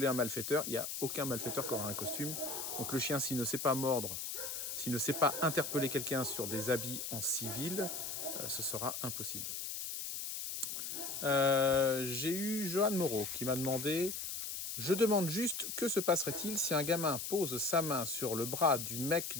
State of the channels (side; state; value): left; noise; hiss, 5 dB below the sound